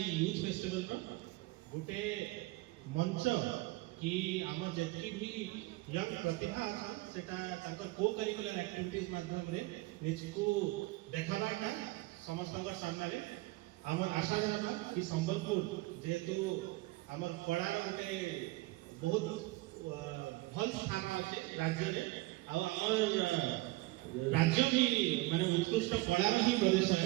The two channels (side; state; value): left; quieter; 20.9 dB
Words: यूथ फेस्टिवल का गोटे मंच कि आम जति भी यंग प्रतिभा अच्छा सेटा ताकर को करिकुलर एक्टिविटीज माध्यम रे निजको देखाबाटा समस्त सामने रे आमर आशा रहता कि संबलपुर जेहेतु आमर कलार गोटे बहुत भल स्थान अच्छे राज्य रे आमर राज्य भी माने उत्कृष्ट कलार ही प्रदेश